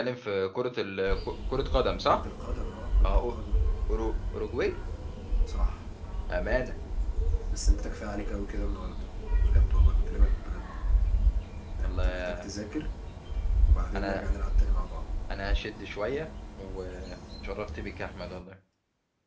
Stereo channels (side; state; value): both; identical; correlation 1.00